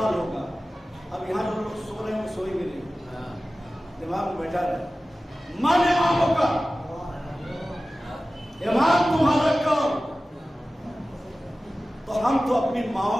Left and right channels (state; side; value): normal; both; correlation 0.96